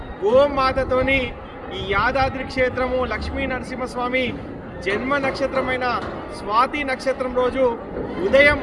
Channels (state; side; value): identical; both; correlation 1.00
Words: గోమాతతోని ఈ యాదాద్రి క్షేత్రము లక్ష్మీ నరసింహస్వామి జన్మ నక్షత్రమైన స్వాతి నక్షత్రం రోజు ఉదయం